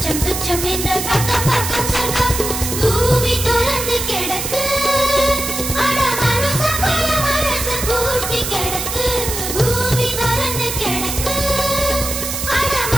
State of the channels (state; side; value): noise; right; hiss, 4 dB below the sound